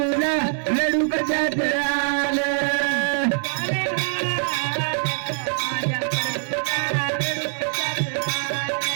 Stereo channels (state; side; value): silent; left; 63 dB below the other